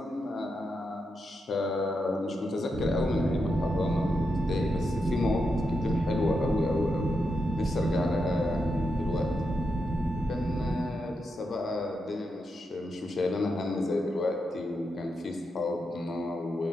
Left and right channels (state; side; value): normal; both; correlation 0.85